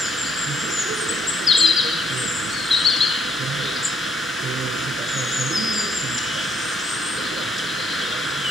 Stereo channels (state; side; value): normal; both; correlation 0.69